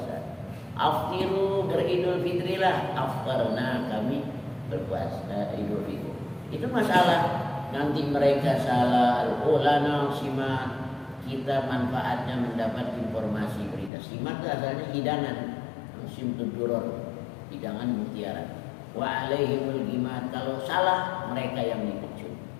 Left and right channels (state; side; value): drops out; right; at 13.9 s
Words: Aftiru, beridul fitrilah, aftarna kami berpuasa idul fitri. Itu masalah. Nanti mereka salah, ulana simak, kita manfaatnya mendapat informasi berita. Simak itu asalnya hidangan, simtud duror, hidangan mutiara. Wa alaihimul gimat, kalau salah mereka yang dipecut.